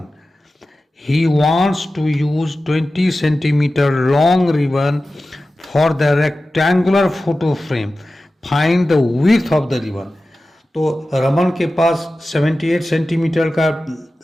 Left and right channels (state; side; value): normal; both; correlation 0.95